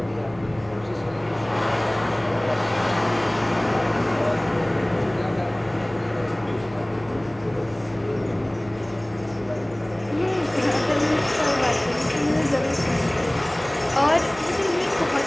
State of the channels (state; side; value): noise; right; hum, 24 dB below the sound